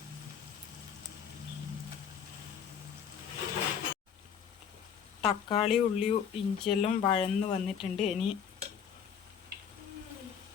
തക്കാളി, ഉള്ളി, ഇഞ്ചിയെല്ലാം വഴന്ന് വന്നിട്ടുണ്ട്. ഇനി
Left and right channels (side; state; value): right; quieter; 7.8 dB